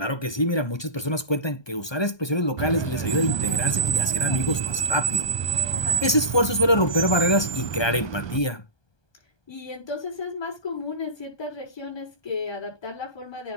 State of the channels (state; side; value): late; right; 1.2 ms